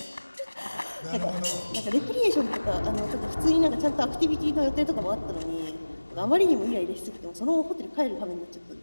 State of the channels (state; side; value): inverted; both; correlation -1.00